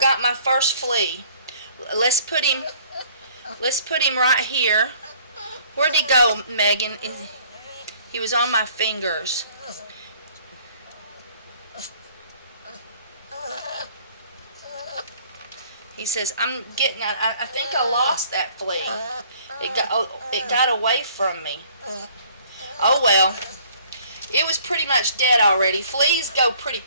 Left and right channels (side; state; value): both; inverted; correlation -0.58